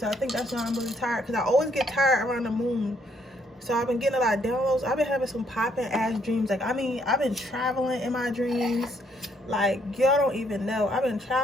I think that's why I'm really tired, because I always get tired around the moon. So I've been getting a lot of downloads. I've been having some popping ass dreams. Like, I mean, I've been traveling in my dreams. Like, y'all don't even know. I've been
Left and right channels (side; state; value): both; normal; correlation 0.70